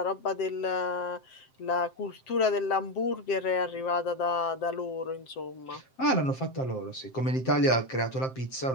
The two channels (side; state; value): right; late; 7.6 ms